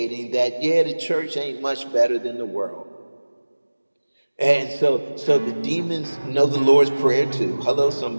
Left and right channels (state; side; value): inverted; both; correlation -1.00